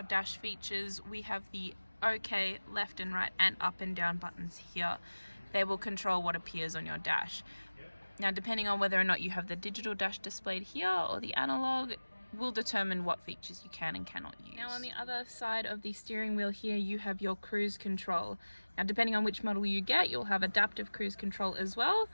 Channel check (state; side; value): inverted; both; correlation -1.00